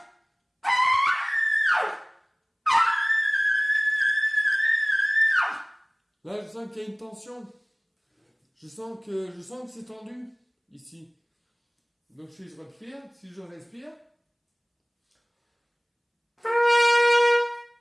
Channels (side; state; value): both; identical; correlation 1.00